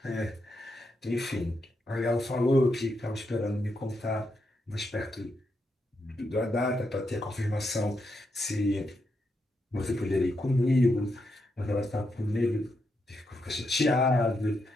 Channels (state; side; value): normal; both; correlation 0.82